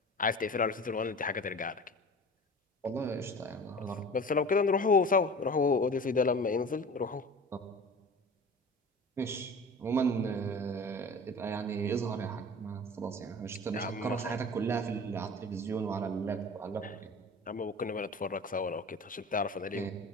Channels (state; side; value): normal; both; correlation 0.38